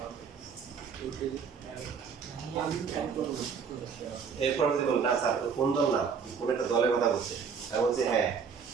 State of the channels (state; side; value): quieter; left; 6.2 dB